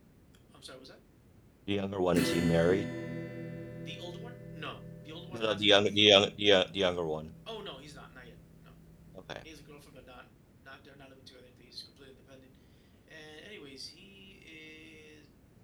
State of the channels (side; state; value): both; identical; correlation 1.00